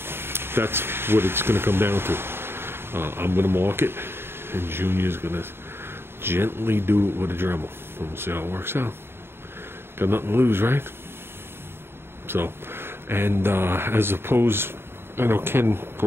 That's what it's going to come down to. I'm going to mark it, and Junior's going to gently do it with a Dremel, and we'll see how it works out. Got nothing to lose, right? So, and as opposed, I know Ken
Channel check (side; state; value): left; late; 0.11 ms